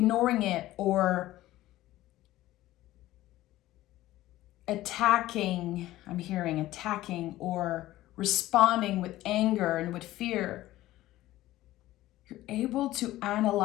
it or attacking or responding with anger and with fear, you're able to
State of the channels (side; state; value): right; quieter; 15.8 dB